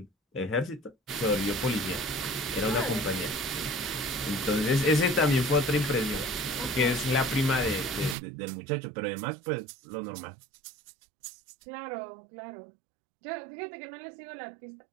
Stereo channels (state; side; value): drops out; left; at 8.2 s